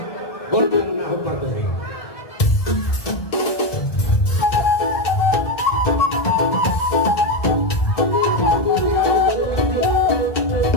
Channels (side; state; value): right; late; 1.7 ms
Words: gorjang nahu partosi.